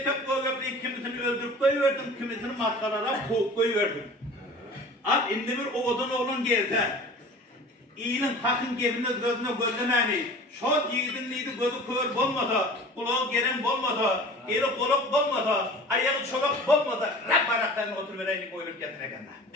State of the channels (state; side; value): normal; both; correlation 0.41